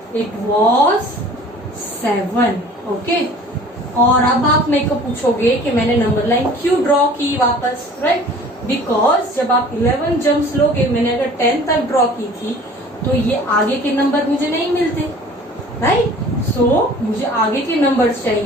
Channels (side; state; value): both; normal; correlation 0.47